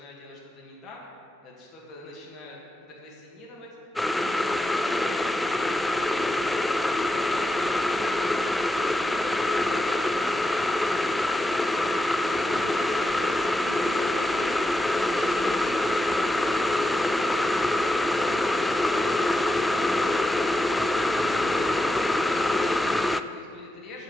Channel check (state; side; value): normal; both; correlation 0.88